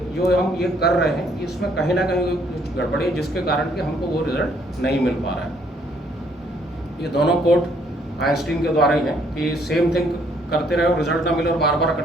जो हम ये कर रहे हैं इसमें कहीं ना कहीं कुछ गड़बड़ी है जिसके कारण कि हमको वो रिजल्ट नहीं मिल पा रहा है। ये दोनों कोट आइंस्टीन के द्वारा ही है कि सेम थिंग करते रहे और रिजल्ट ना मिले और बार बार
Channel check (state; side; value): normal; both; correlation 0.66